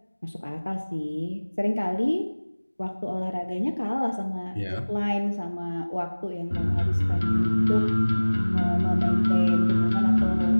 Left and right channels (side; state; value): both; inverted; correlation -1.00